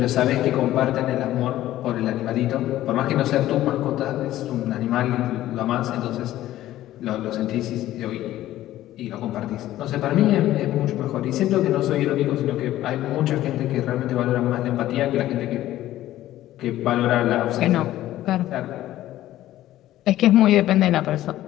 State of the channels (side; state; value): right; quieter; 14.2 dB